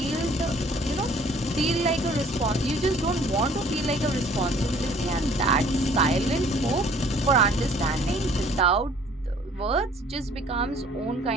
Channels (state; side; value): normal; both; correlation 0.55